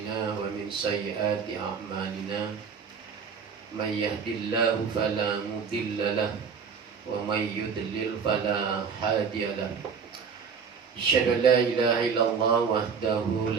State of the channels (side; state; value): left; quieter; 6.1 dB